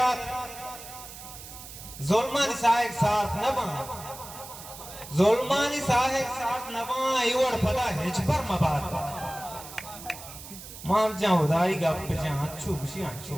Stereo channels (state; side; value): noise; right; hiss, 14 dB below the sound